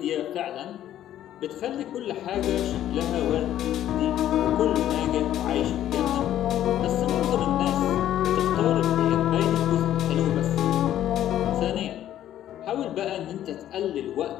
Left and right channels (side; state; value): right; quieter; 11.9 dB